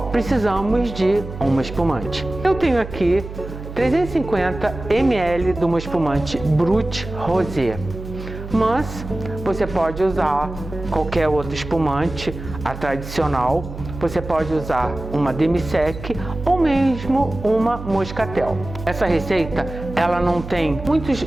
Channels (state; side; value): noise; right; hum, 11 dB below the sound